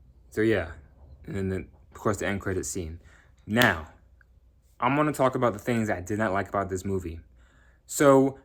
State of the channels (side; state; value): both; identical; correlation 1.00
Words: so yeah. And then, of course, the end credit scene. Now, I'm going to talk about the things I did not like about this movie. So,